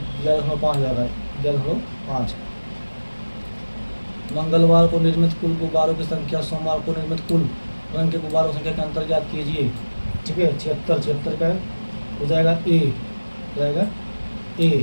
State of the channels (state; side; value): inverted; both; correlation -1.00